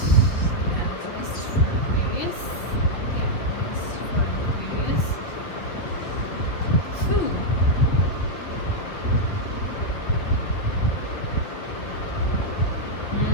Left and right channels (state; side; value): late; right; 5.8 ms